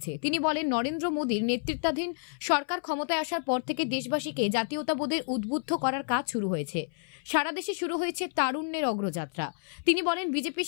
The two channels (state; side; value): silent; right; 58 dB below the other